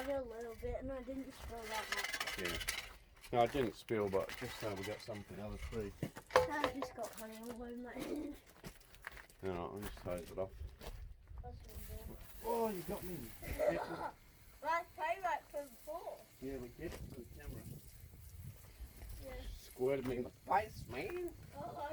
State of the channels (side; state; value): both; identical; correlation 1.00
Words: it a little bit, and I didn't spill that much. yeah. No, I didn't spill, but just so we got some for the other tree. I just got honey all over my hand. Alright, I'll just hose it off. That's what I'm doing. Oh, you got me. That's payback for before. Yeah, we get it for the camera. Yeah. Squirted me in the face, man. Oh,